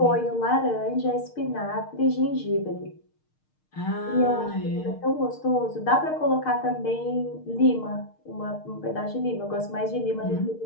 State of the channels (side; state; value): right; late; 6.5 ms